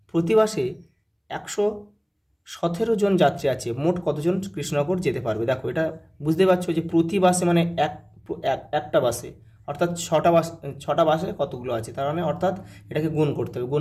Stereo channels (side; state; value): both; identical; correlation 1.00